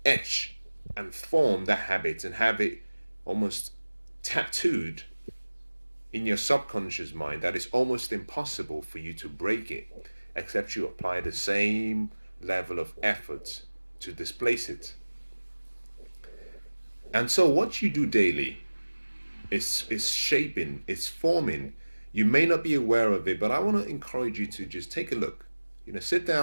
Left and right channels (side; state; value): both; inverted; correlation -1.00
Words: etch and form that habit and have it almost tattooed in your subconscious mind that it's almost impossible for you to break it except you apply the same level of effort to displace it. And so what you do daily is shaping, it's forming. You may not be aware of it, but I want to encourage you to just take a look. Sit